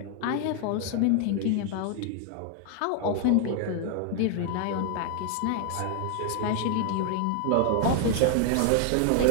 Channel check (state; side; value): different; both; correlation 0.00